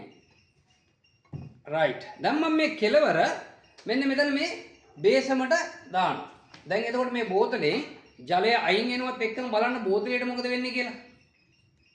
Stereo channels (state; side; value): identical; both; correlation 1.00